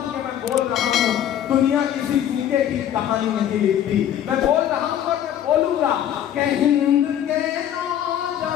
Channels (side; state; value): right; quieter; 10.6 dB